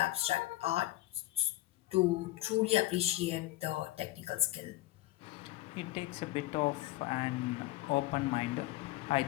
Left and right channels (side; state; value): right; quieter; 17.2 dB